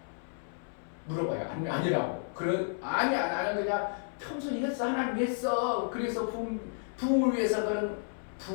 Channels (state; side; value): silent; right; 56 dB below the other